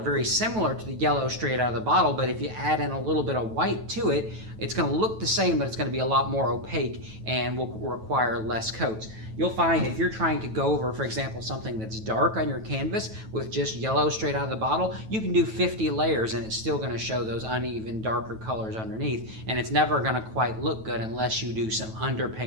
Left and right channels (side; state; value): left; late; 9.2 ms